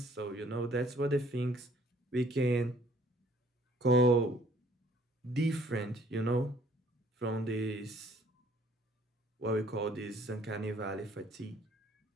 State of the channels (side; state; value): both; normal; correlation 0.60